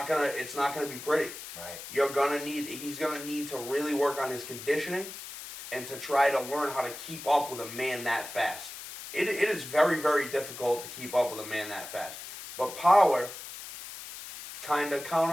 going to be pretty. Right. He's going to need to really work on his conditioning and to try to learn how to keep up with a man that fast. It is very, very difficult to keep up with a man that fast. But power kind of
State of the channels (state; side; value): noise; left; hiss, 11 dB below the sound